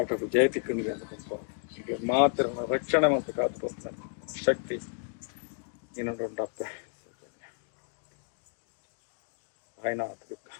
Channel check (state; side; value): silent; right; digital silence